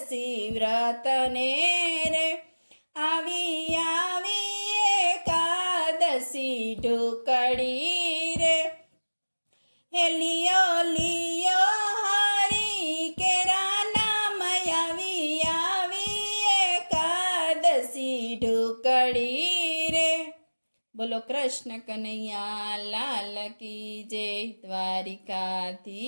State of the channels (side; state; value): both; inverted; correlation -1.00